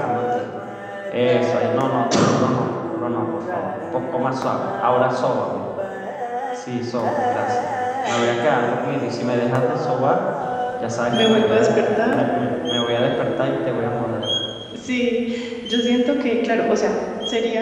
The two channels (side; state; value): both; identical; correlation 1.00